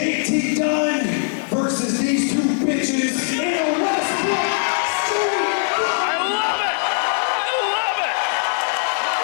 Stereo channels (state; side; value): silent; right; digital silence